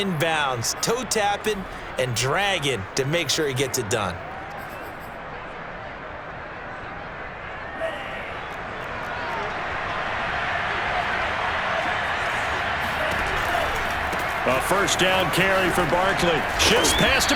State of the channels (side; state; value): both; identical; correlation 1.00